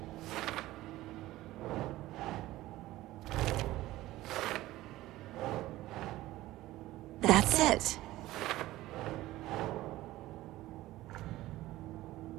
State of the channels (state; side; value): quieter; left; 16.6 dB